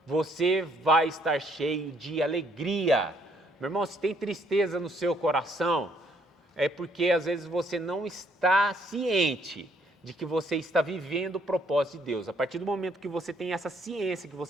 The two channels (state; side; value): normal; both; correlation 0.67